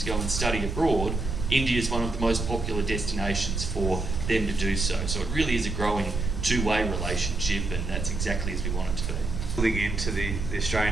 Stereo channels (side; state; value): right; noise; rumble, 3 dB below the sound